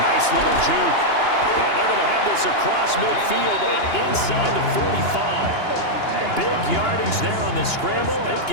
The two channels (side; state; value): right; late; 2.9 ms